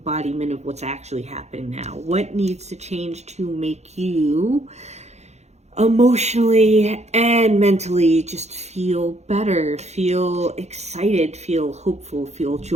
of what's actually happening now? What needs to change to make you emotionally and mentally just feel better, feel excited, feel hopeful, feel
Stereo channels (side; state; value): left; late; 0.32 ms